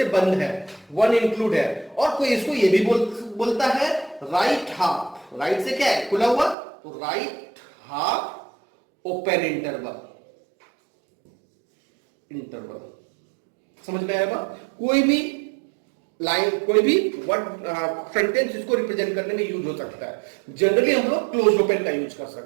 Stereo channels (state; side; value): drops out; left; at 6.6 s